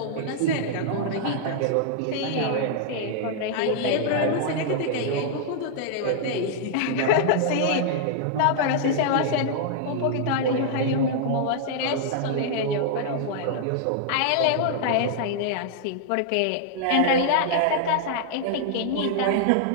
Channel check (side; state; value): both; different; correlation -0.01